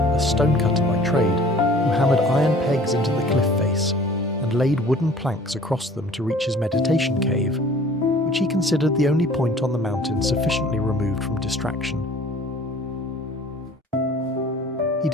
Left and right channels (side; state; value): both; normal; correlation 0.49